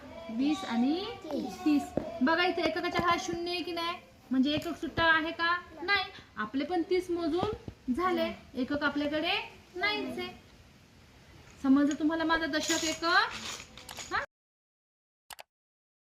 20 आणि 30. बघा इथे एककाच्या हा 0 आहे की नाही? म्हणजे एकक सुट्टा आहे का? नाही. आपले पण 30 मोजून झाले. एकक आपल्याकडे नाहीच आहे. समजलं तुम्हाला माझा दशक एकक?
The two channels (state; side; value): identical; both; correlation 1.00